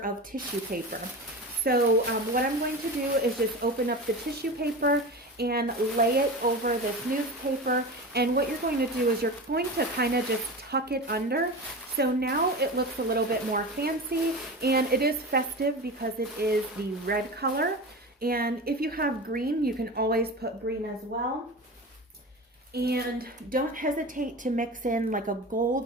tissue paper. So what I'm going to do is just open up the tissue paper and lay it over this newspaper. And what you're going to do is you're going to kind of just tuck it under. So now it looks a little bit more fancy, and it is festive because it is the red color. And if you have green, you can always put green as well. And don't hesitate to mix in like a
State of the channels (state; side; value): normal; both; correlation 0.28